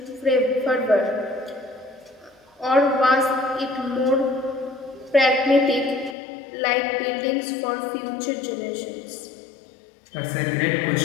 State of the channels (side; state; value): right; drops out; at 6.2 s